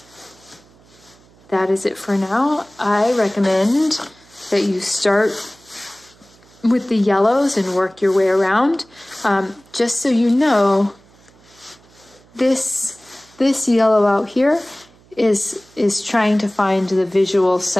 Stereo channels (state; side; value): noise; right; hum, 29 dB below the sound